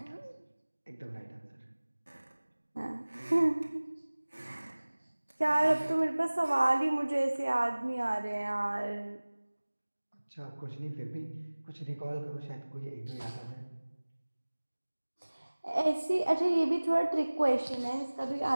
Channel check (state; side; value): inverted; both; correlation -1.00